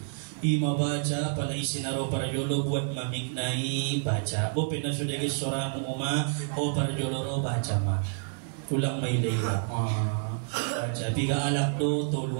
Ima baca pala isinaro para jolo buat mamiknai baca. Bo pina sudah ke soramu uma o para jolo ro baca ma. Ulang may leila. Baca. Biga alak do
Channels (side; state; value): left; silent; 59 dB below the other